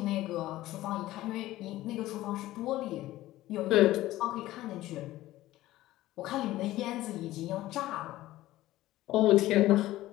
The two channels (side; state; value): right; quieter; 16.0 dB